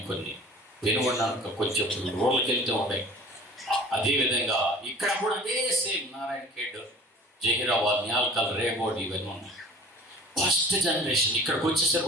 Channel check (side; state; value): both; normal; correlation 0.46